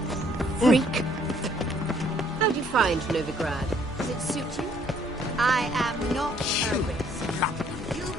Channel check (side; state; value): both; normal; correlation 0.63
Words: Freak. How do you find Novigrad? Does it suit you? I am not a risk.